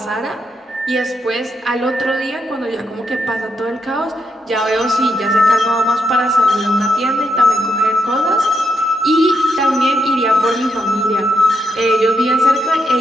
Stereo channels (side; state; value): both; normal; correlation 0.81